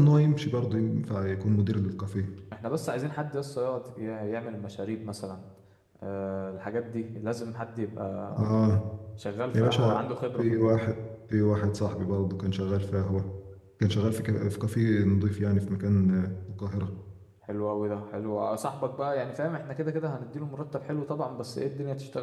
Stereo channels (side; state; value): both; identical; correlation 1.00